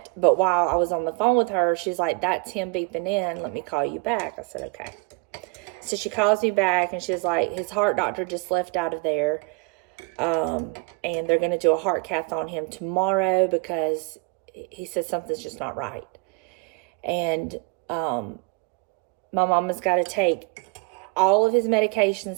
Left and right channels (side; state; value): left; quieter; 28.5 dB